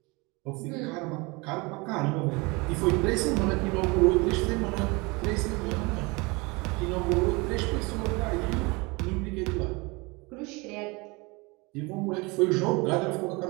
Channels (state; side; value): quieter; left; 26.3 dB